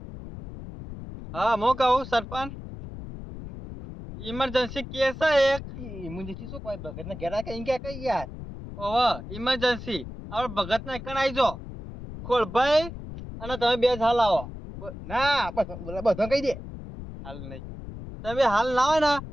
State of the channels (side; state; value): left; noise; rumble, 11 dB below the sound